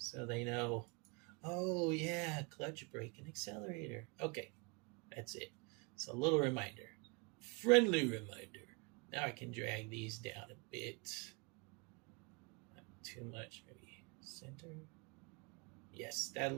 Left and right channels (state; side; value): quieter; left; 30.5 dB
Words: they know, oh yeah, clutch, brake, and accelerator. Okay, that's it. It's a little reminder, friendly reminder. Now I can drag these down a bit. Not too much, maybe center. Yes, that